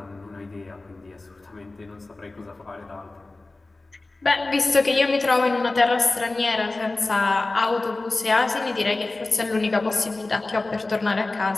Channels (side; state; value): right; quieter; 3.2 dB